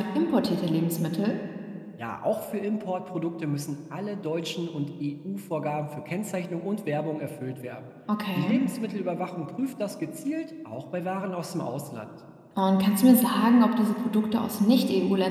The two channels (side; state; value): both; identical; correlation 1.00